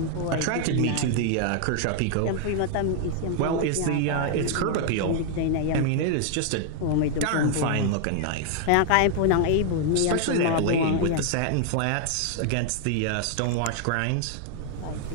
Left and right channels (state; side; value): different; both; correlation 0.00